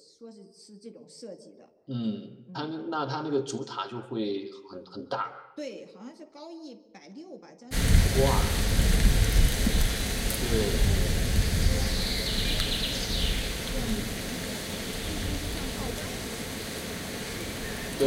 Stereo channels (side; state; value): both; identical; correlation 1.00